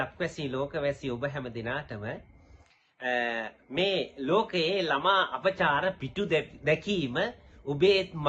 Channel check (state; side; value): identical; both; correlation 1.00